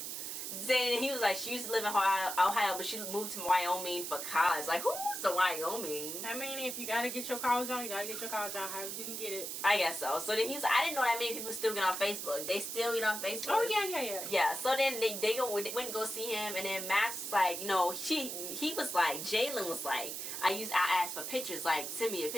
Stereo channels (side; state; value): right; noise; hiss, 5 dB below the sound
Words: Then he was like, she used to live in Ohio, but she moved to Wyoming for college. Like, who's the Wyoming? I mean, if you gotta get your college on, you gotta get your college on. How you can get it? I guess so. So then he was like, I didn't know that many people still get on Facebook. They still get on Facebook. Oh yeah. Yeah. So then they went and go see him, and then Max was like, he was like, Jaylin was like, I asked for pictures, like, send me a